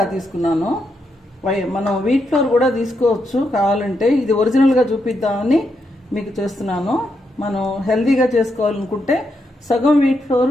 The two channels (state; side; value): normal; both; correlation 0.81